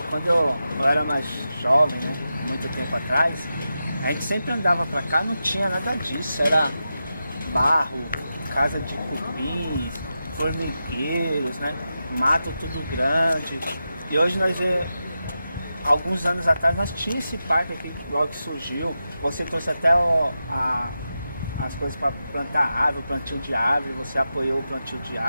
Quando eu era mais jovem, né, muito tempo atrás, a gente sempre andava pra cá, não tinha nada disso, era barro, casa de cupim, formigueiros, né, mato tudo grande. E hoje nós vemos alguns anos atrás nós tínhamos esse parque aqui logo que surgiu. Você trouxe até as coisas para plantar árvore, plantio de árvore, você apoiou o plantio de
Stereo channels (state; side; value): inverted; both; correlation -0.90